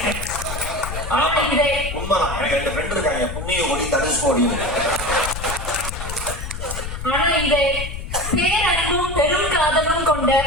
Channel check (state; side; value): noise; left; rumble, 7 dB below the sound